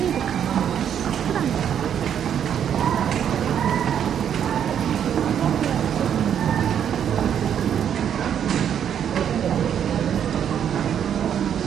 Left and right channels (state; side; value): quieter; left; 9.0 dB